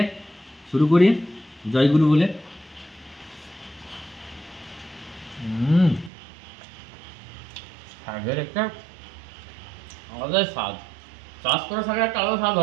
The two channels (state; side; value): drops out; left; at 6.1 s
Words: শুরু করি জয়গুরু বলে। শাকের একটা আলাদা স্বাদ, চাষ করা শাকের একটা আলাদা স্বাদ